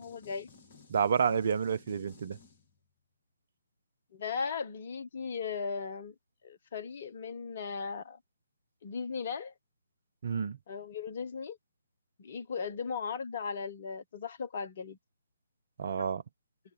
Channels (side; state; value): both; inverted; correlation -0.71